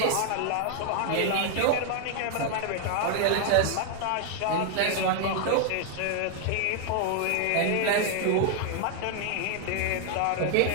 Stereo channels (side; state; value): both; different; correlation 0.00